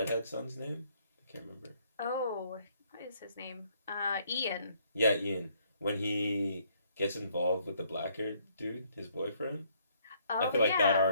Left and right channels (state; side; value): inverted; both; correlation -0.67